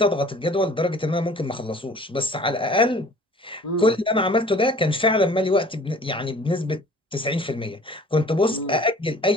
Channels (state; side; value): normal; both; correlation 0.49